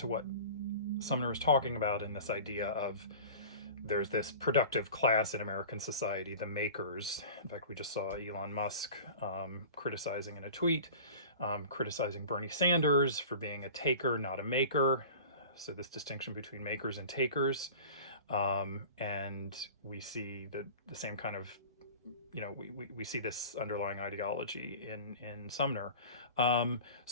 Sumner is talking about in this idea of there's this productive class in American society, the makers. In fact, we just saw Elon Musk criticizing in a tweet, criticizing Bernie Sanders for being a taker, not a maker. So this distinction between makers and takers. And we see the same kind of, we see this underlying ideology in Sumner.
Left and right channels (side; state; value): both; inverted; correlation -0.39